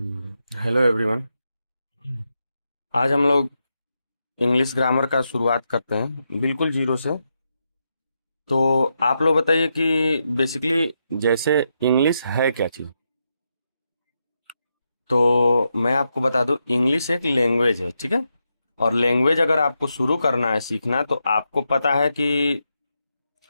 everyone. आज हम लोग इंग्लिश ग्रामर का शुरुआत करते हैं बिल्कुल जीरो से। तो आप लोग बताइए कि बेसिकली जैसे इंग्लिश है क्या चीज़। तो मैं आपको बता दूं, इंग्लिश एक लैंग्वेज है, ठीक है। और लैंग्वेज अगर आपको शुरू करना है सीखना, तो आपको पता है कि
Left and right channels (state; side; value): inverted; both; correlation -0.84